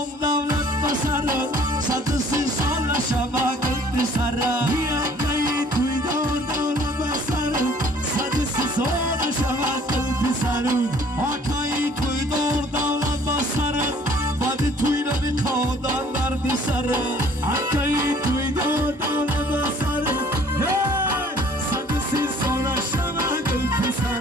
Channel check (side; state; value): both; normal; correlation 0.55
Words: دولت بسره صد سی سال شبکت بسره بیایی توی دولت بسره صد سی سال شبکت بسره آکایی توی دولت بسره بعد توی نمی کادن در بسره آکایی توی دولت بسره صد سی سال شبکت